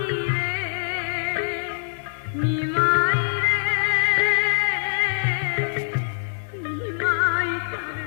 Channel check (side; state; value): right; silent; digital silence